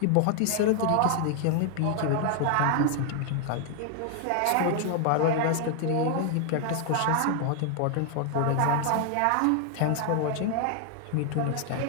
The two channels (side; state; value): both; different; correlation 0.00